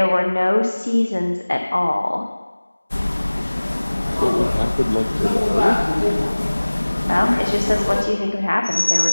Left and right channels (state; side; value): inverted; both; correlation -1.00